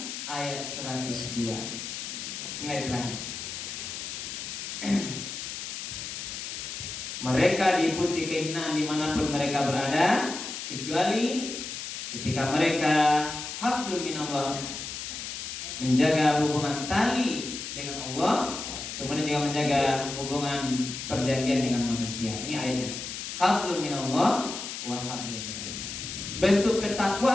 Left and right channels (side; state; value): left; noise; hiss, 7 dB below the sound